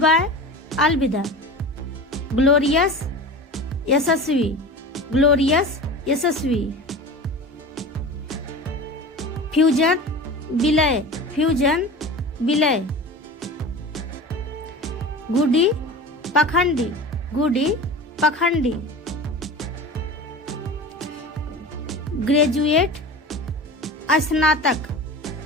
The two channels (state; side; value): normal; both; correlation 0.33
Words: अलविदा। ग्लोरियस यशस्वी, ग्लोरियस यशस्वी। फ्यूजन विलय, फ्यूजन विलय। गुडी पखंडी, गुडी पखंडी। ग्रेजुएट स्नातक,